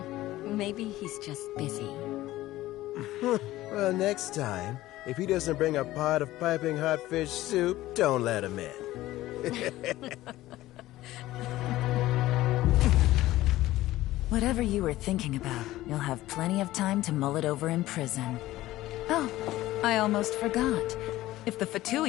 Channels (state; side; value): quieter; right; 16.1 dB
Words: Maybe he's just busy. Well, next time, if he doesn't bring a pot of piping hot fish soup, don't let him in. Whatever you were thinking about, you'll have plenty of time to mull it over in prison. Oh, I almost forgot. If the